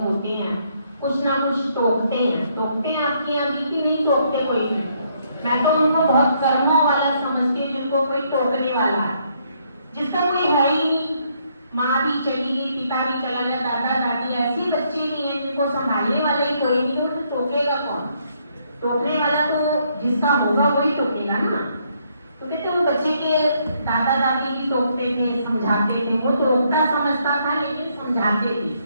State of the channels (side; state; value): both; inverted; correlation -0.72